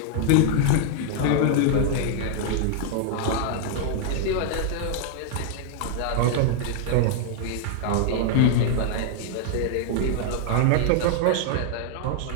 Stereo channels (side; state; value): both; different; correlation 0.00